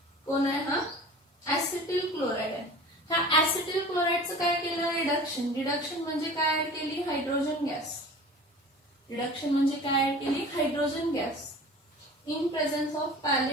कोण आहे? हा ऍसिटिल क्लोराइड आहे. ह्या ऍसिटिल क्लोराइडचं काय केलं? रिडक्शन. रिडक्शन म्हणजे काय ऍड केली? Hydrogen gas. रिडक्शन म्हणजे काय ऍड केली? Hydrogen gas in presence of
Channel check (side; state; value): both; normal; correlation 0.40